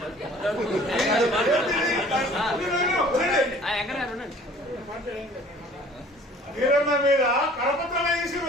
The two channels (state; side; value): normal; both; correlation 0.51